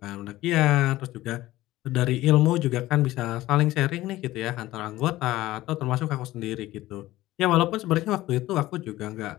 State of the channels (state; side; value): quieter; right; 16.5 dB